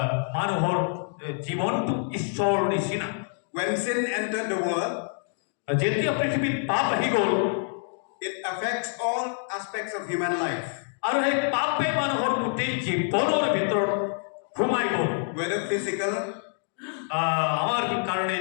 মানুহৰ জীৱনটো ঈশ্বৰৰ নিচিনা When sin entered the world, যেতিয়া পৃথিৱীত পাপ আহি গ'ল it affects all aspects of human life. আৰু সেই পাপে মানুহৰ গোটেই জীৱনৰ ভিতৰত সোমাই গ'ল Whether physical, আমাৰ কাৰণে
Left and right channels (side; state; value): right; silent; 60 dB below the other